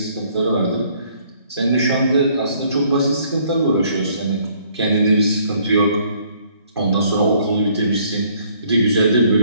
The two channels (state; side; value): inverted; both; correlation -0.63